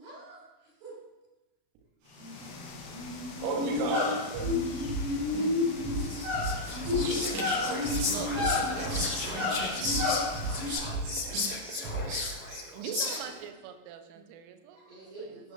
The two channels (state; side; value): late; left; 36 ms